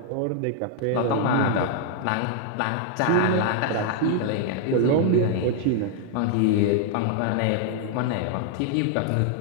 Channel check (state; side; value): different; both; correlation 0.00